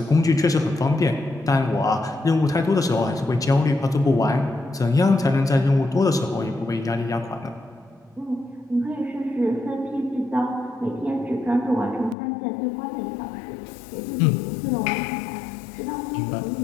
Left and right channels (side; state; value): right; drops out; at 12.2 s